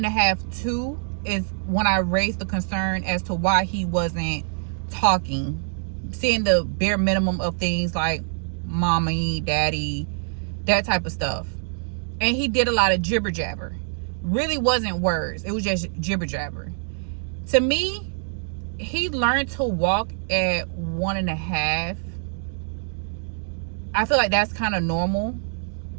2 is when I raised the concern as to why he wasn't talking, saying the bare minimum of things like mommy, daddy, that type of stuff. And he did a lot of jibber jabber. Really wasn't words. It was just jibber jabber. To me, he learned to walk at 1.5. I feel like that's kind of normal.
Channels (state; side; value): silent; left; digital silence